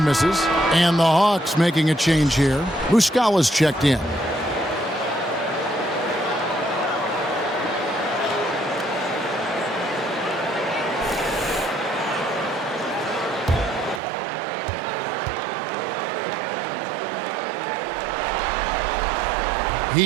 misses. And the Hawks making a change here. Muscala's checked in.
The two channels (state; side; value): drops out; left; at 14.0 s